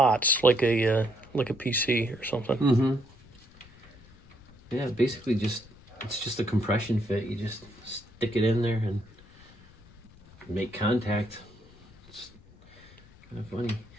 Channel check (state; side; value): noise; left; rumble, 25 dB below the sound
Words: like a PC or something. Mm-hmm. Yeah, basically it's just a compression fit. You just stick it in there and make contact. It's kind of funny.